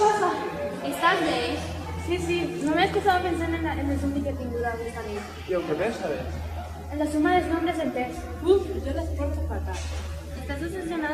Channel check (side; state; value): both; identical; correlation 1.00